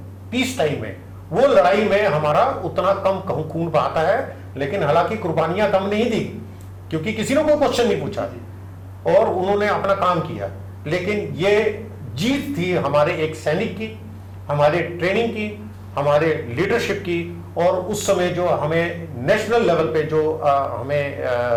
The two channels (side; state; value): both; identical; correlation 1.00